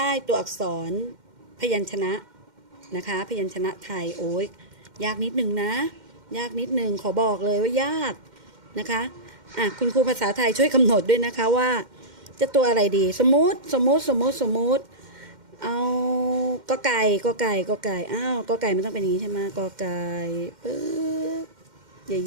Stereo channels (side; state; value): left; late; 2.1 ms